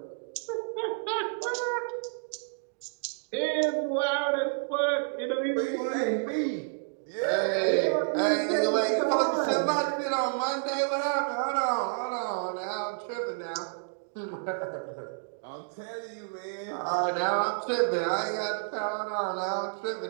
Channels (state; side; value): silent; left; digital silence